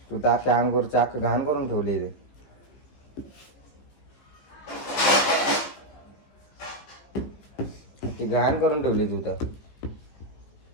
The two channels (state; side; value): late; right; 15 ms